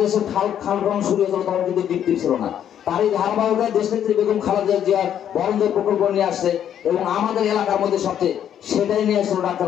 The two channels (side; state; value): right; quieter; 9.8 dB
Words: খাল খনন শুরু হয়েছিল তখন কিন্তু বিক্রি ছিল না। তারই ধারাবাহিকতায় দেশনেত্রী বেগম খালেদা জিয়ার বরঞ্জোর প্রকল্প নিয়ে আসছে এবং আমাদের এলাকার মধ্যে সবচেয়ে সেটাই নিয়ে আসছিল ডাক্তার